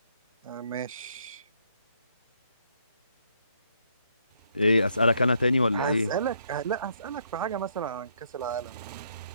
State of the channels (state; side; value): inverted; both; correlation -0.72